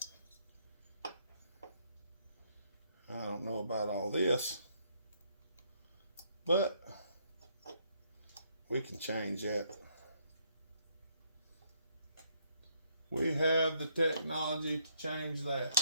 I don't know about all this, but we can change that. We have the technology to change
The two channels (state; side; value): inverted; both; correlation -0.71